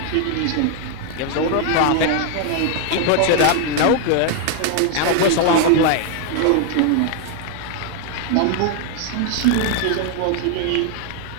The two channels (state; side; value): different; both; correlation 0.00